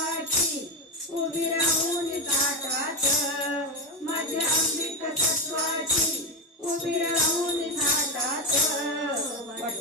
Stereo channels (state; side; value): normal; both; correlation 0.12